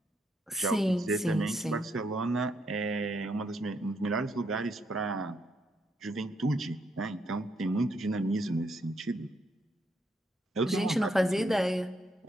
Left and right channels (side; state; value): both; normal; correlation 0.76